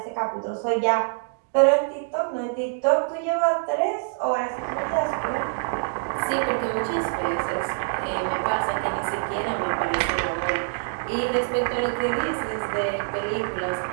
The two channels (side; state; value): left; silent; digital silence